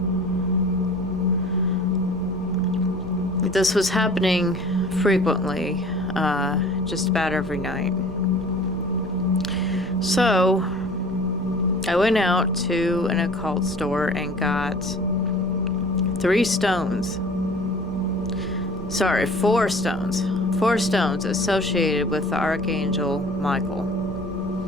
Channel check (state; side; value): normal; both; correlation 0.45